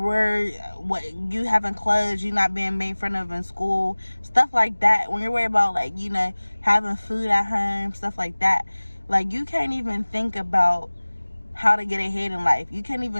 you having clothes, you not being made fun of in school, stuff like that, when you're worried about like, you know, having food at home, stuff like that, like you can't even think about how to get ahead in life. You can't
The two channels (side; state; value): both; inverted; correlation -1.00